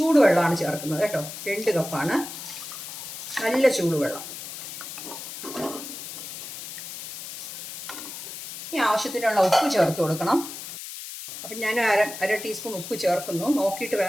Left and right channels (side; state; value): left; noise; hiss, 10 dB below the sound